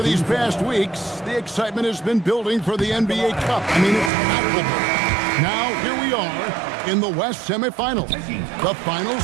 these past weeks, the excitement has been building for the NBA Cup. I mean, it's palpable. Now, here we are in the West semifinals. The final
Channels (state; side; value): drops out; left; at 4.1 s